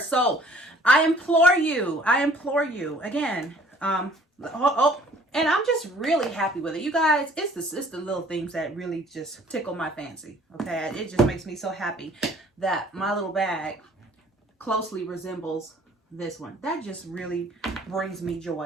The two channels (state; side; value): normal; both; correlation 0.55